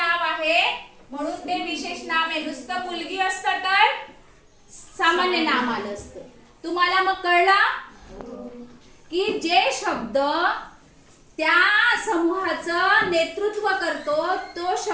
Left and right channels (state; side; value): identical; both; correlation 1.00